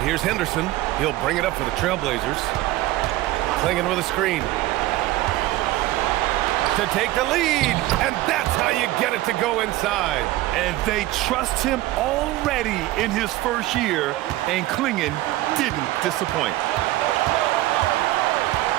here's Henderson. He'll bring it up for the Trailblazers. Klingon with a screen. To take the lead. And that's how you get it to go inside. And they trust him already in his first year. And Klingon didn't disappoint.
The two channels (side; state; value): left; quieter; 16.9 dB